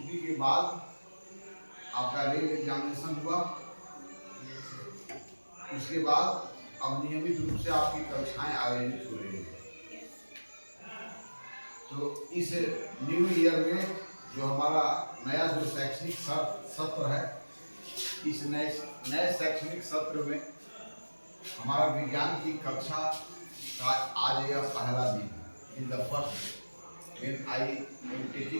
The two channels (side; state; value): both; inverted; correlation -1.00